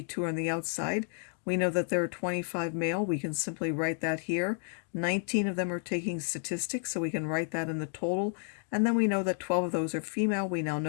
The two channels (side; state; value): right; silent; 57 dB below the other